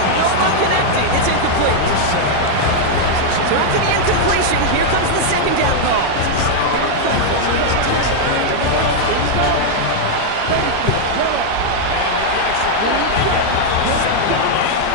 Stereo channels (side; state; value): both; different; correlation 0.00